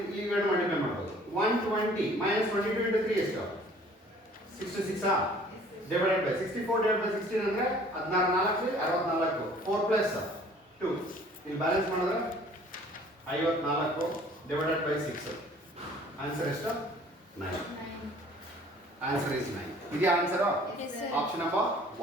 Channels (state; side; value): normal; both; correlation 0.53